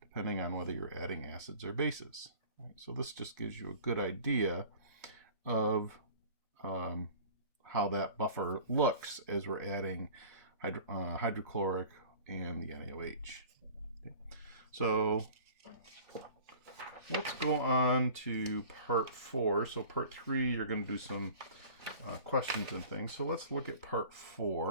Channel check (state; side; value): inverted; both; correlation -0.44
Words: on whether you're adding acids or bases. Right? So this just gives you a good idea of how that buffer looks as we're adding hydrochloric and the NaOH. Okay. So let's go on to part 4. So part 3, you're going to do some questions and things. So let's look at part